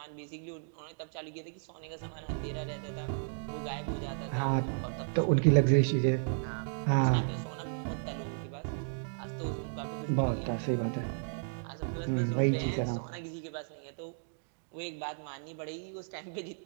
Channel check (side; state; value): left; silent; digital silence